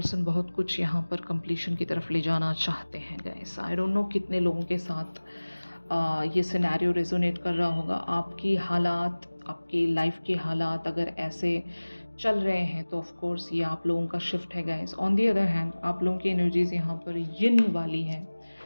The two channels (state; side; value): inverted; both; correlation -1.00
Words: बहुत कुछ यहाँ पर कंप्लीशन की तरफ ले जाना चाहते हैं गाइस। आई डोंट नो कितने लोगों के साथ ये सिनेरियो रेजोनेट कर रहा होगा। आपकी हालात, आपकी लाइफ के हालात अगर ऐसे चल रहे हैं तो ऑफ कोर्स ये आप लोगों का शिफ्ट है guys. On the other hand आप लोगों की एनर्जीज यहाँ पर यिन वाली हैं,